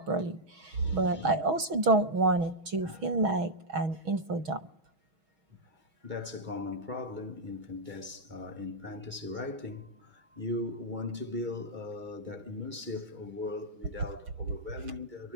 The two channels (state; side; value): late; left; 6.3 ms